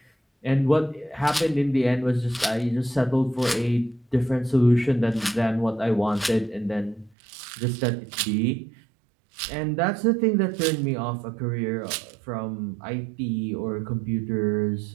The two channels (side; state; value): left; drops out; at 7.2 s